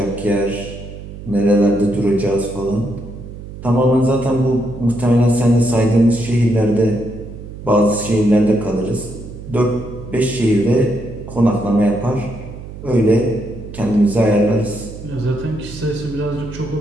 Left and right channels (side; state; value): right; noise; hum, 13 dB below the sound